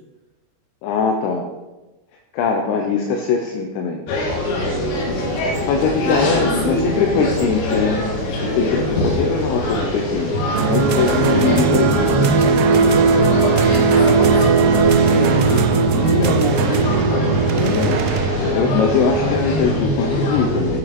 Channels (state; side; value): late; right; 20 ms